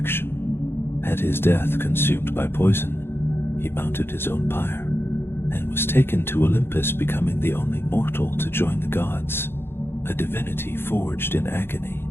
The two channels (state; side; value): late; right; 0.11 ms